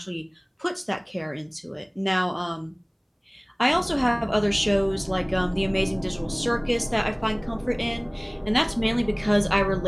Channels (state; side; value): identical; both; correlation 1.00